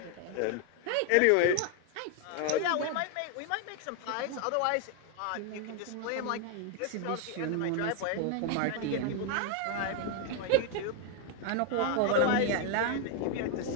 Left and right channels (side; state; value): both; different; correlation 0.01